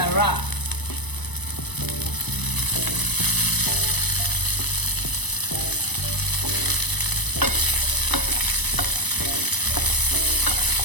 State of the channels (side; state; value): right; late; 1.0 ms